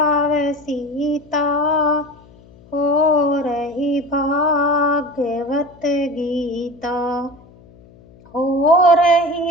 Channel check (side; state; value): left; noise; hum, 25 dB below the sound